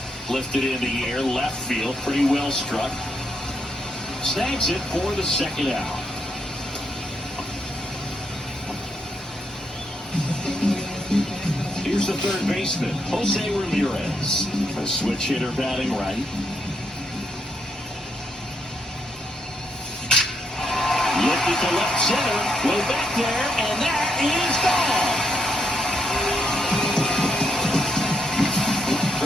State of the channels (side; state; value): both; normal; correlation 0.79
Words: Lifted in the air, left field, pretty well struck. Snags it for the 2nd out. Here's the 3rd baseman, Jose Ramirez. A switch hitter batting right. Lifted to left center, way back there, and that is gone.